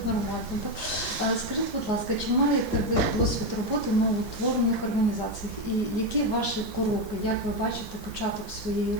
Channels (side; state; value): left; late; 15 ms